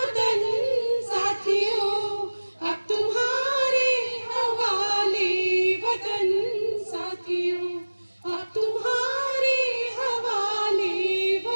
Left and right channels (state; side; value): inverted; both; correlation -1.00